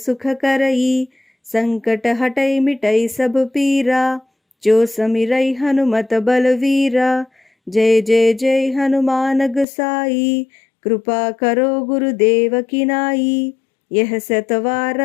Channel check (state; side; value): drops out; right; at 9.7 s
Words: करई संकट हटै मिटै सब पीरा जो समिरै हनुमत बलवीरा जय जय जय हनुमान गोसाई, कृपा करो गुरुदेव की नाई। यह